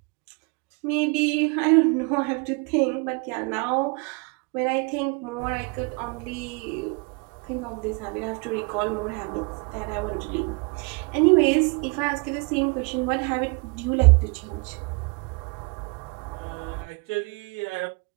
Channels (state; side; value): quieter; left; 31.6 dB